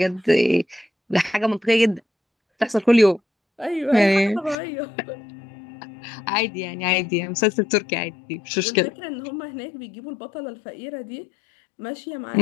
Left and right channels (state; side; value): drops out; right; at 4.5 s